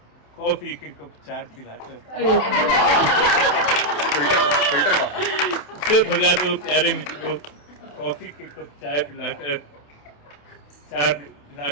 कॉफी के कप 4 पिलाकर। अरे वाह, फिल्टर का उसे भगा दो प्यारे मित्रों कॉफी के कप चाय पिलाकर, 4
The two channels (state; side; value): late; right; 28 ms